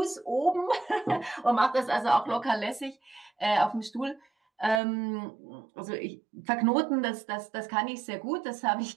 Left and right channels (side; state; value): left; drops out; at 4.8 s